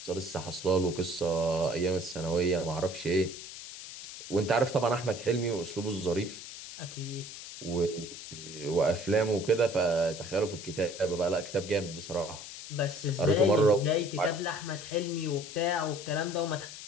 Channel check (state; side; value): noise; left; hiss, 12 dB below the sound